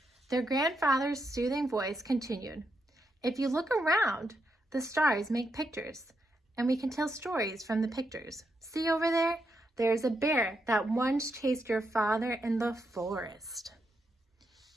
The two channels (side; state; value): both; normal; correlation 0.82